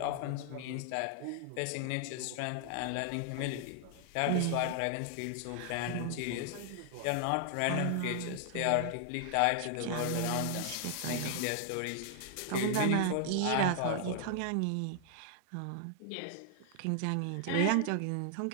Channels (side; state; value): both; different; correlation 0.00